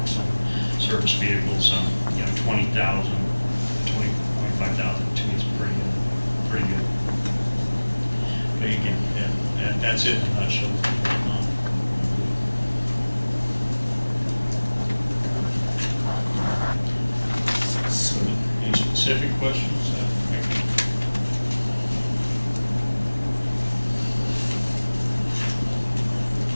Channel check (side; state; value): both; inverted; correlation -1.00